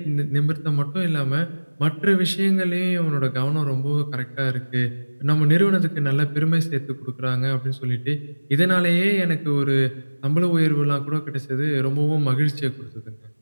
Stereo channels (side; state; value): both; inverted; correlation -1.00